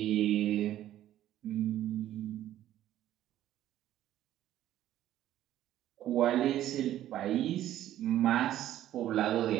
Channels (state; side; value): quieter; left; 12.6 dB